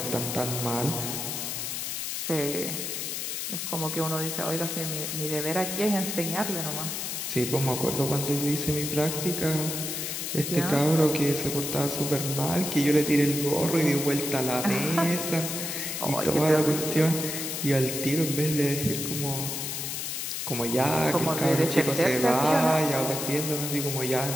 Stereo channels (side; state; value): left; noise; hiss, 3 dB below the sound